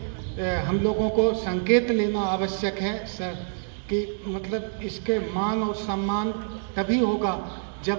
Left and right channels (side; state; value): left; silent; digital silence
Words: हम लोगों को संकेत लेना आवश्यक है कि मतलब इसके मान और सम्मान तभी होगा